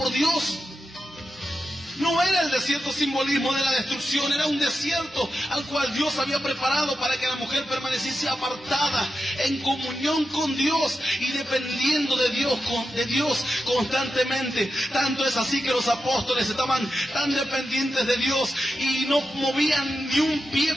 Dios. No era el desierto simbolismo de la destrucción, era un desierto al cual Dios había preparado para que la mujer permaneciese apartada, en comunión con Dios y dependiendo de Dios constantemente. Tanto es así que los apóstoles estaban tan dependientes de Dios y no movían ni un pie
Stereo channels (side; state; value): both; normal; correlation 0.89